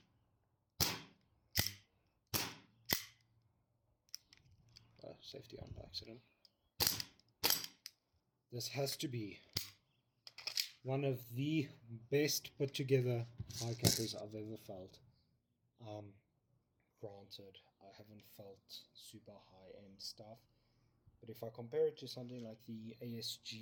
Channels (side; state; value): both; identical; correlation 1.00